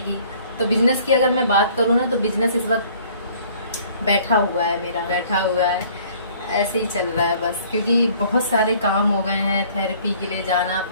तो बिजनेस की अगर मैं बात करूँ ना, तो बिजनेस इस वक्त बैठा हुआ है, मेरा बैठा हुआ है, ऐसे ही चल रहा है बस। क्योंकि बहुत सारे काम हो गए हैं, थेरेपी के लिए जाना,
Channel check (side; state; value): both; inverted; correlation -0.55